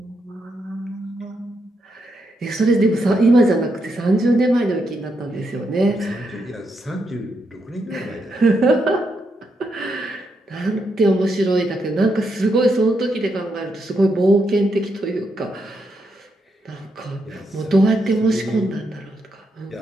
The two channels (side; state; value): both; normal; correlation 0.81